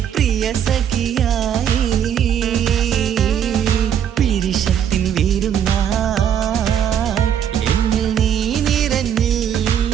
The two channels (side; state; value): left; quieter; 9.1 dB